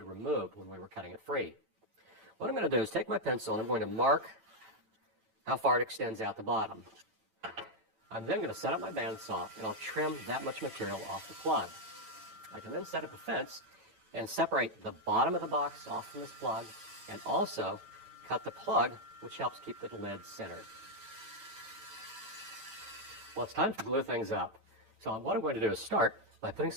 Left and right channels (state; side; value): late; left; 9.1 ms